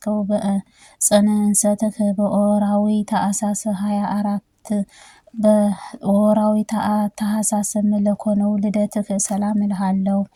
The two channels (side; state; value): both; identical; correlation 1.00